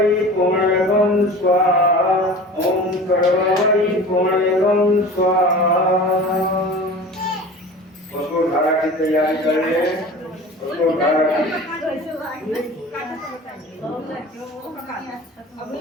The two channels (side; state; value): both; normal; correlation 0.38